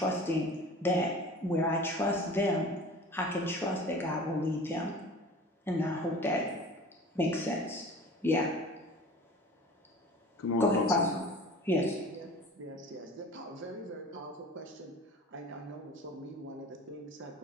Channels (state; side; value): normal; both; correlation 0.41